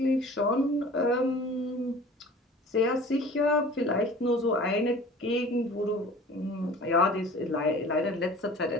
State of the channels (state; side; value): normal; both; correlation 0.44